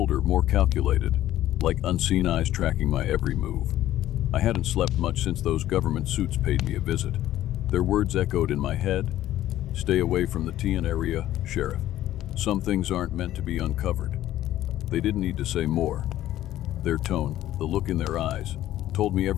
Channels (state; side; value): quieter; right; 13.6 dB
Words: more calculated, like unseen eyes tracking my every move. I hadn't slept much since those government suits paid me a visit. Their words echoed in my head. Stay away from the TN area, Sheriff. Some things aren't meant to be uncovered. They didn't need to say more. Their tone, the look in their eyes, told me